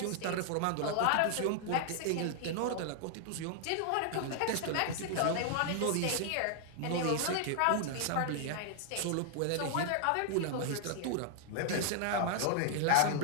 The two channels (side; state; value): both; different; correlation 0.00